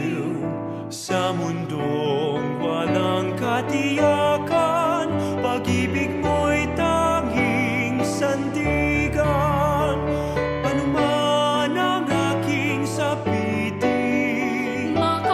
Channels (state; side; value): identical; both; correlation 1.00